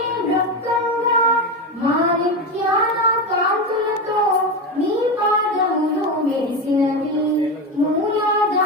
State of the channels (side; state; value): both; normal; correlation 0.17